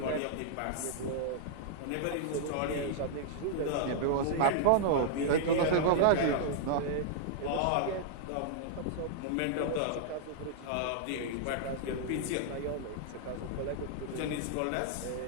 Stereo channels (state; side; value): different; both; correlation -0.01